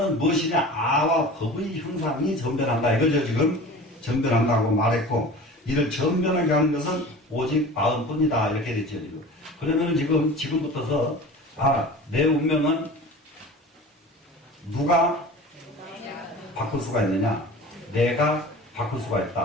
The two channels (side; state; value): both; normal; correlation 0.38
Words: 무엇이냐? 아와 법의 형상이 전변한다. 이거죠, 지금. 전변한다고 말했고, 이를 전변하게 하는 것은 오직 마음뿐이다. 이렇게 됐죠, 지금. 그러면은 지금부터서, 내 운명은 누가 바꿀 수가 있느냐? 내가 바꿀 수가